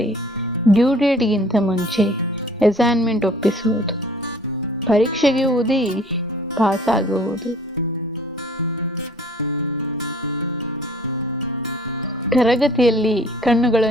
ಡ್ಯೂ ಡೇಟ್ಗಿಂತ ಮುಂಚೆ ಅಸೈನ್ಮೆಂಟ್ ಒಪ್ಪಿಸುವುದು, ಪರೀಕ್ಷೆಗೆ ಓದಿ ಪಾಸಾಗುವುದು, ತರಗತಿಯಲ್ಲಿ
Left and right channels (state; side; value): normal; both; correlation 0.52